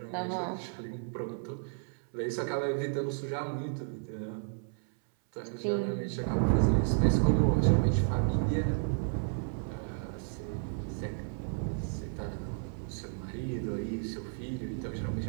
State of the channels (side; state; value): left; silent; 56 dB below the other